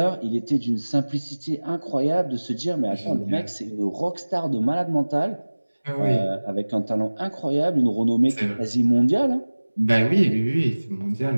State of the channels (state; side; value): inverted; both; correlation -1.00